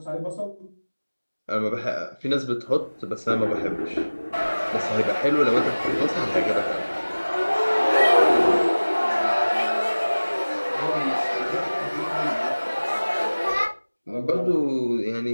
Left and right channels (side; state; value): both; inverted; correlation -1.00